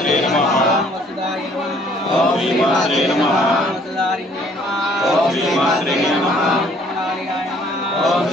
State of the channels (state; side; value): normal; both; correlation 0.60